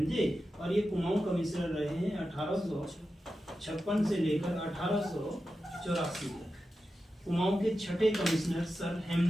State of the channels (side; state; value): both; normal; correlation 0.91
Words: और ये कुमाऊं कमिश्नर रहे हैं 1856 से लेकर 1884 तक। कुमाऊं के 6ठे कमिश्नर सर